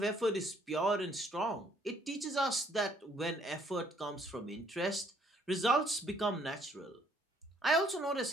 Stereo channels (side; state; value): both; normal; correlation 0.65